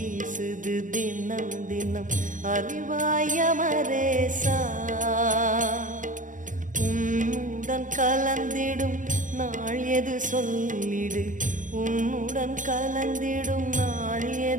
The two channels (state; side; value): late; left; 0.38 ms